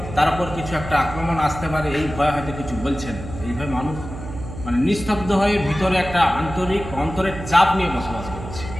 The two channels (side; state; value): right; noise; hum, 11 dB below the sound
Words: তার উপর কিছু একটা আক্রমণ আসতে পারে, এই ভয়ে হয়তো কিছু বলছে না। এইভাবে মানুষ নিস্তব্ধ হয়ে ভিতরে একটা অন্তরের চাপ নিয়ে বসবাস করছে।